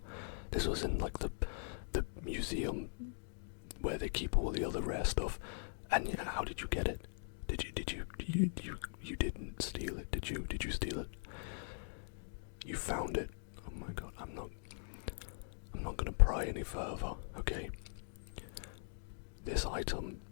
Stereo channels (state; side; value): silent; right; digital silence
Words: This was in like the museum where they keep all the other rare stuff. And yeah, how did you get it? You didn't steal it, did you? Did you steal it? You found it. Oh my god, I'm not gonna pry any further, okay? This item